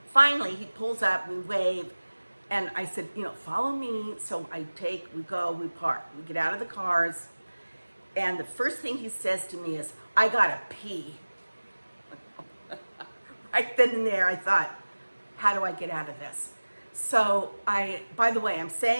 Finally, he pulls up, we wave, and I said, follow me. So we go, we park, we get out of the cars. And the first thing he says to me is, I gotta pee. Right then and there, I thought, how do I get out of this? So by the way, I'm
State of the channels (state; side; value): inverted; both; correlation -1.00